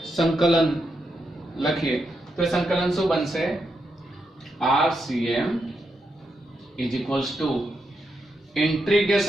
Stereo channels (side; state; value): both; normal; correlation 0.83